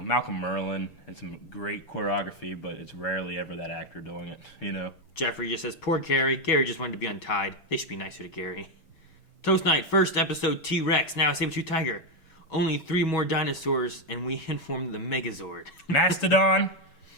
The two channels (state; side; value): late; right; 6.2 ms